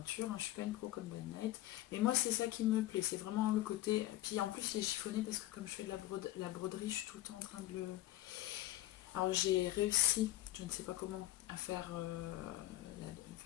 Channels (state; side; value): quieter; right; 15.7 dB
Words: Je suis pas une pro comme Bonnie Night. Mais moi, c'est ça qui me plaît. C'est vraiment le côté... Puis en plus, il est chiffonné parce que comme je fais de la broderie, je suis tout le temps en train de le... Alors j'ai réussi, je ne sais pas comment, à faire